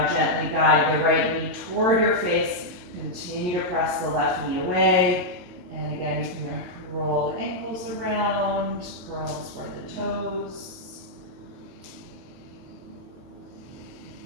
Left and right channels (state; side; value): late; left; 22 ms